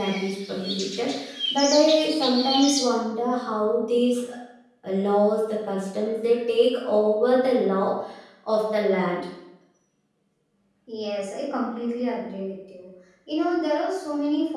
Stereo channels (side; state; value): both; identical; correlation 1.00